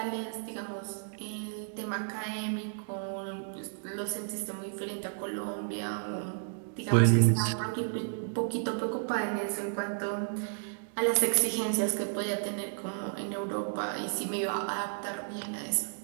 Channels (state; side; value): silent; left; digital silence